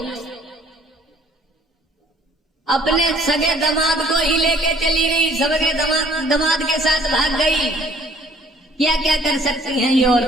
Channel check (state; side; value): normal; both; correlation 0.57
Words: अपने सगे दामाद को ही लेके चली गई, सगे दामाद के साथ भाग गई। क्या क्या कर सकती हैं ये